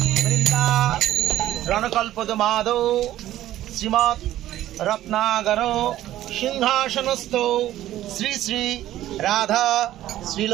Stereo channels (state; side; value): quieter; left; 13.7 dB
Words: বৃন্দা রণকল্পদমাদৌ শ্রীমৎ রত্নাগর সিংহাসনস্থ শ্রী শ্রী রাধা